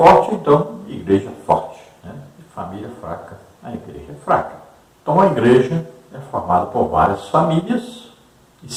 então, igreja forte. Né? E família fraca, a igreja é fraca. Então, a igreja é formada por várias famílias, e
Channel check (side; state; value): both; identical; correlation 1.00